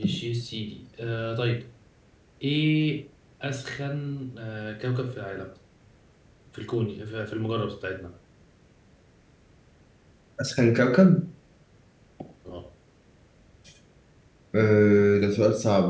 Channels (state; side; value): identical; both; correlation 1.00